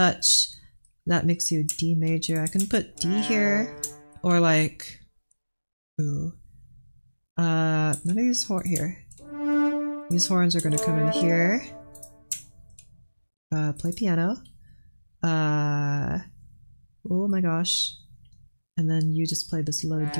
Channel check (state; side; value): inverted; both; correlation -1.00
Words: That makes you D major. I can put D here, or like, ooh, none of these horns here. These horns are gonna come in here. Play piano. Oh my gosh. And then you just play this low D